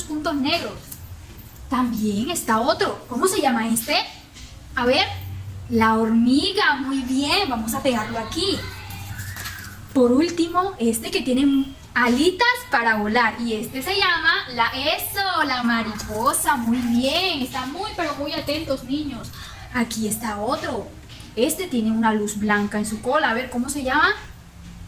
puntos negros. También está otro. ¿Cómo se llama este? A ver, la hormiga. Muy bien, vamos a pegarlo aquí. Por último, este que tiene alitas para volar. Y este se llama la mariposa. Muy bien, están muy, pero muy atentos, niños. Aquí está otro. Este tiene una luz blanca en su cola. A ver, ¿cómo se llama?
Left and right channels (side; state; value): both; identical; correlation 1.00